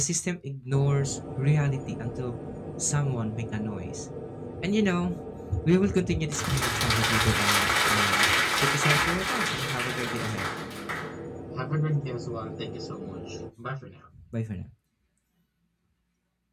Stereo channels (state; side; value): identical; both; correlation 1.00